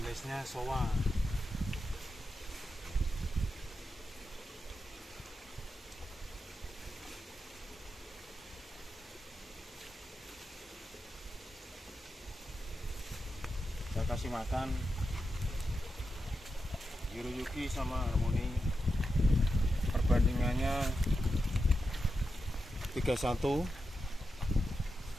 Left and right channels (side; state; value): both; normal; correlation 0.88